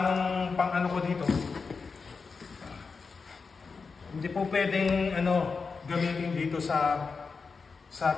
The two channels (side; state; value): right; quieter; 4.8 dB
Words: ng pang ko dito. Hindi po pwedeng gamitin dito sa